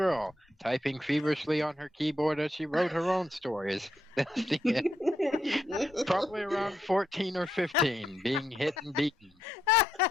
typing feverishly on her keyboard as she wrote her own stories. Probably around 14 or 15, being hit and beaten.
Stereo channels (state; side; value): normal; both; correlation 0.80